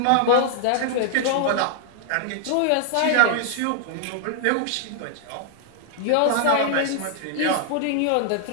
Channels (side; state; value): both; different; correlation 0.00